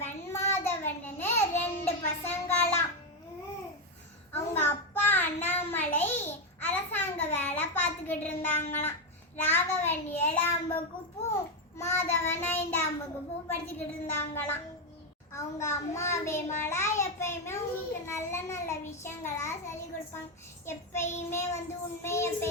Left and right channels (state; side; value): normal; both; correlation 0.07